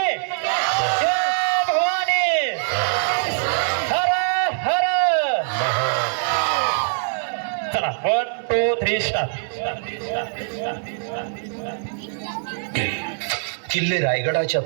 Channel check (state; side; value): silent; left; 64 dB below the other